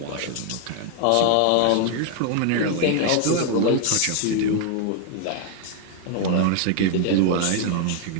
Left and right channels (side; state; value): both; different; correlation 0.00